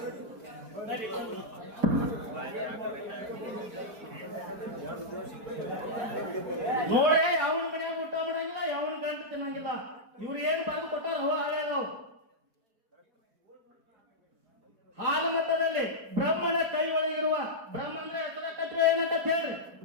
ನೋಡ್ರಿ, ಯಾವನ ಮನೆಯಾಗ ಊಟ ಮಾಡಂಗಿಲ್ಲ, ಯಾವನ ಗಂಟು ತಿನ್ನಂಗಿಲ್ಲ. ಇವ್ರು ಏನ್ ಬರೆದು ಕೊಟ್ಟಾರ ಹೋ ಹಾಳಾದವು. ಹಾಲು ಮತದಲ್ಲಿ ಬ್ರಹ್ಮನ ಕೈ ಒಳಗಿರುವ ಬ್ರಹ್ಮ ಅಂದ್ರೆ ಹೆಸರ ಕಟ್ರೆ ಏನಂತ ಹೇಳ್ರಿ.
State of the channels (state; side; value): late; left; 5.0 ms